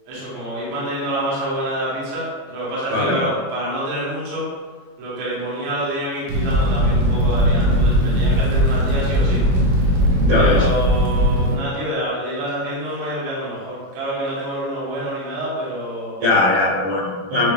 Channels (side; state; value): left; late; 22 ms